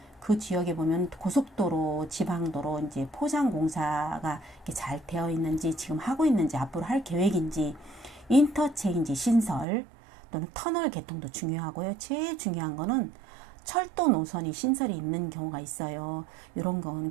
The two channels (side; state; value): left; drops out; at 9.7 s